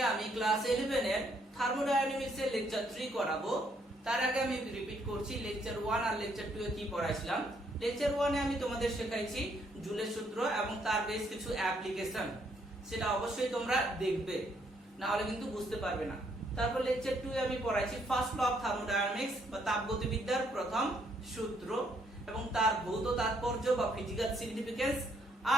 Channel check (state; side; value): normal; both; correlation 0.71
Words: আমি ক্লাস 11 এর থার্মোডায়নামিক্স এর লেকচার 3 করাবো। তার আগে আমি রিপিট করছি লেকচার 1 আর লেকচার 2 এ কি পড়াইছিলাম। লেকচার 1 এ আমি তোমাদের শেখাইছি জুলের সূত্র এবং তার বেশ কিছু অ্যাপ্লিকেশন, সেটা অবশ্যই তোমরা দেখবে, না হলে কিন্তু বুঝতে পারবে না। তারপর লেকচার 2 এ আমি পড়াইছি ফার্স্ট ল অফ থার্মোডায়নামিক্স বা তাপগতিবিদ্যার প্রথম সূত্র এবং তার ভৌত তাৎপর্য বা ফিজিক্যাল সিগনিফিকেন্স।